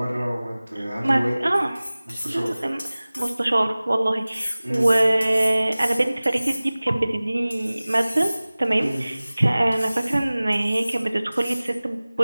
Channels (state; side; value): inverted; both; correlation -0.99